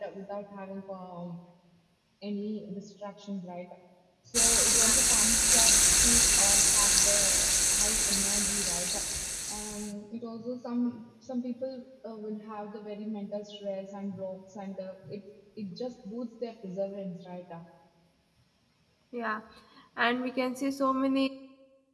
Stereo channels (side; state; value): both; identical; correlation 1.00